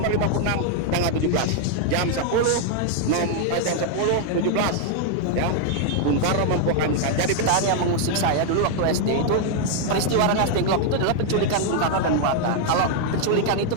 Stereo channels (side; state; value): both; different; correlation 0.00